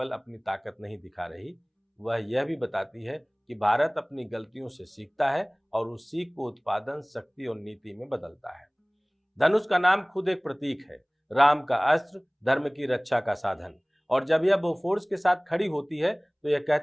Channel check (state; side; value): identical; both; correlation 1.00